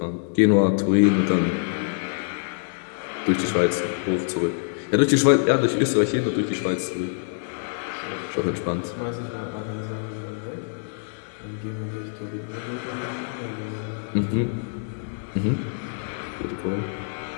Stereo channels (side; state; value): right; silent; digital silence